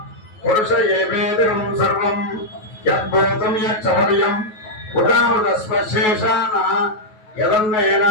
పురుష ఏవేదకం సర్వం యద్భూతం యచ్చపర్యం ఉదావదస్పశేషాన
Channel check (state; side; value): late; right; 9.3 ms